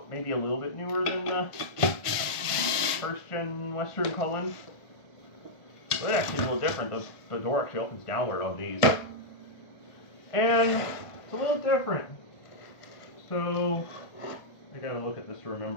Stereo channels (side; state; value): right; late; 1.5 ms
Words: maybe a little bit newer than the first gen Western Cullen. So it actually is a little different. The door actually opens downward on these. And it's a little different. So I gotta look at this to